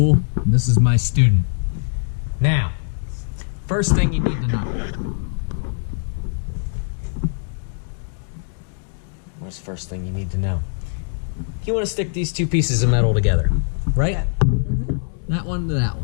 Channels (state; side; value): silent; right; digital silence